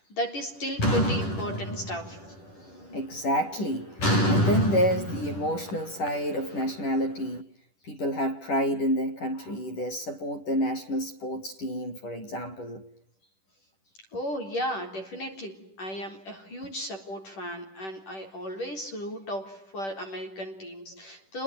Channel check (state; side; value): late; right; 10 ms